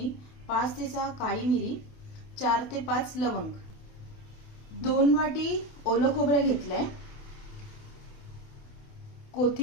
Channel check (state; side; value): late; right; 28 ms